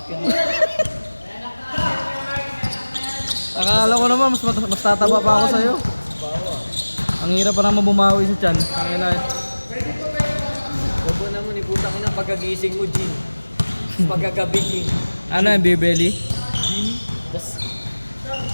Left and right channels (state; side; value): inverted; both; correlation -1.00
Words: ka. Akala ko naman, mas tataba pa ako sa'yo. Ang hirap pa naman bumawi sa tiyan. Ang ina eh. Huwag mo naman iputang ina pagkagising mo, Jin. Pagkagabi, Jin. Ano yung beer-belly? Tas,